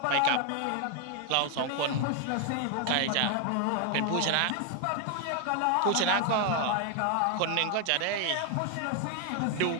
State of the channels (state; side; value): different; both; correlation 0.00